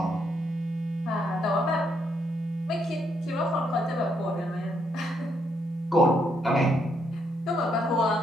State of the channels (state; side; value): normal; both; correlation 0.75